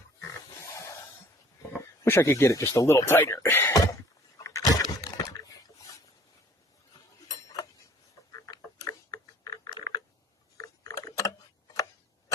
Wish I could get it just a little tighter.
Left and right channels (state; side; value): normal; both; correlation 0.54